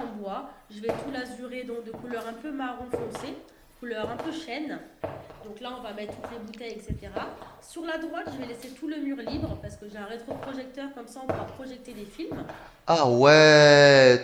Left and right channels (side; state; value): both; identical; correlation 1.00